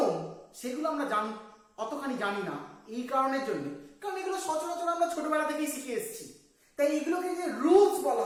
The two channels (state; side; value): identical; both; correlation 1.00